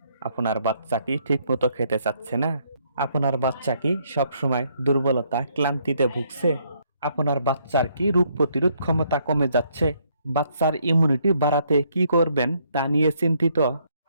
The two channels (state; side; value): inverted; both; correlation -0.70